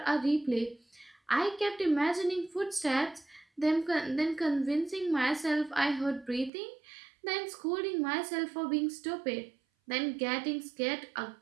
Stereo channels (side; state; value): left; drops out; at 6.5 s